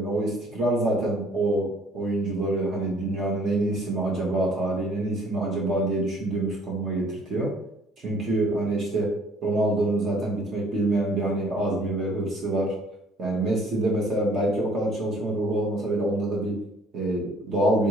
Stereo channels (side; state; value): both; normal; correlation 0.58